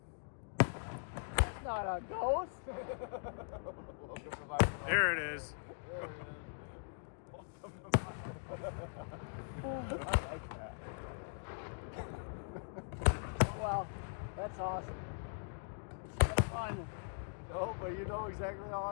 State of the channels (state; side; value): silent; right; digital silence